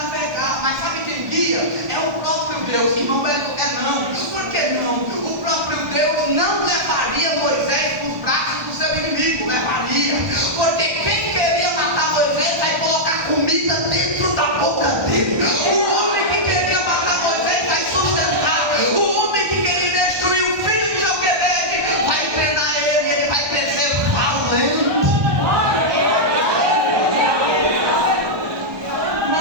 Mas sabe quem guia? É o próprio Deus. Irmão Beto, não. Por que não? O próprio Deus não levaria Moisés para os braços do seu inimigo. Levaria. Porque quem queria matar Moisés vai colocar comida dentro da boca dele. O homem que queria matar Moisés vai sustentar. O homem que queria destruir o filho de Joquebede vai treinar ele. Ele vai crescer valente.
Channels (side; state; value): left; late; 1.2 ms